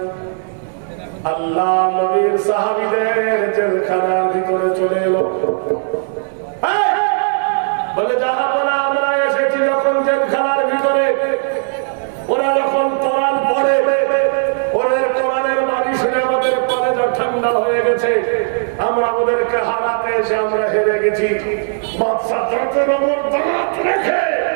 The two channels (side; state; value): left; silent; digital silence